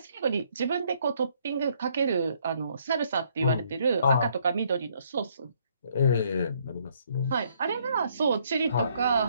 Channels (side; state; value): both; inverted; correlation -0.68